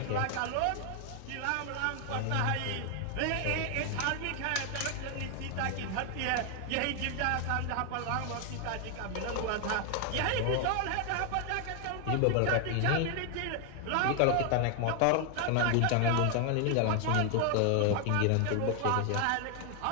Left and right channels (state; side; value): different; both; correlation 0.00